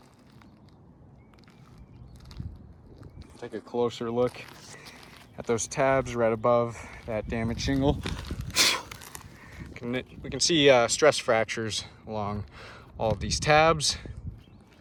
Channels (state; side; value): identical; both; correlation 1.00